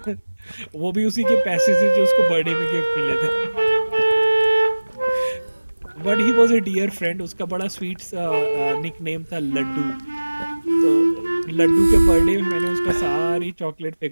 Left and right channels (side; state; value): both; inverted; correlation -1.00